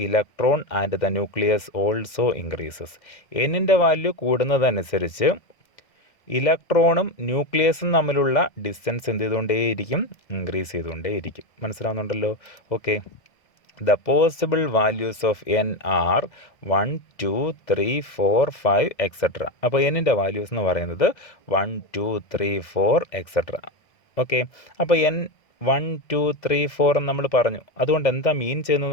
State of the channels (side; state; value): right; late; 2.0 ms